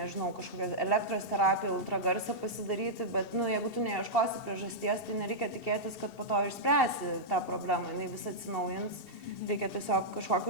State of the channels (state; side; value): late; right; 2.7 ms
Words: kažkokią elektros terapiją, ultragarsą pasidaryti, bet, jeigu tu neieškosi priežasties, tai nereikia tikėtis, kad po to išspręsi tą problemą, jinai vis atsinaujins, reikia tiesiog